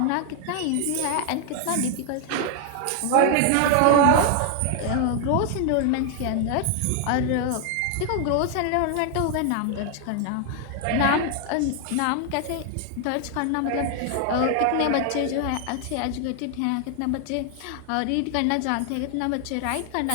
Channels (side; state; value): both; different; correlation 0.00